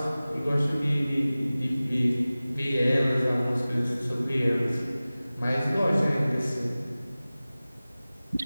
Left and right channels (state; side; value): inverted; both; correlation -0.98